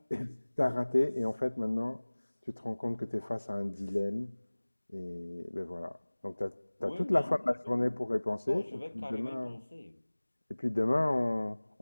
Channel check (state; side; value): inverted; both; correlation -1.00